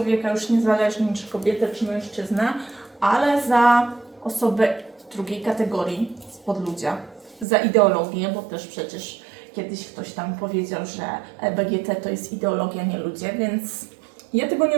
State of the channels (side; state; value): left; drops out; at 7.5 s